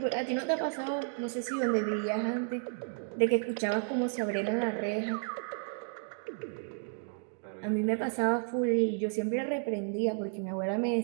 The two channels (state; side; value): silent; left; 56 dB below the other